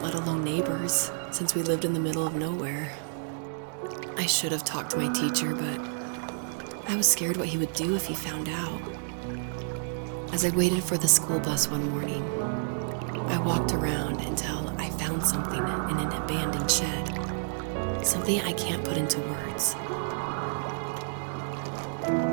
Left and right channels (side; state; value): left; silent; digital silence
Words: alone neighbors, since we lived in the middle of nowhere. I should have talked to my teacher, but I was scared what he would do if he found out. As I waited for the school bus one morning, I walked around until I found something in an abandoned shed. Something I can't put into words.